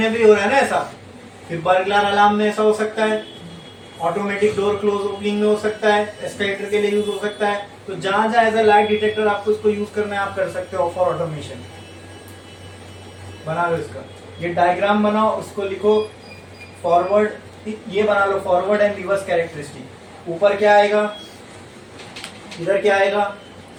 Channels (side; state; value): both; identical; correlation 1.00